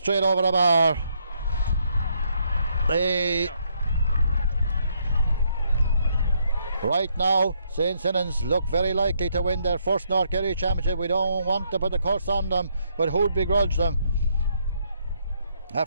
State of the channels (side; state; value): both; inverted; correlation -0.73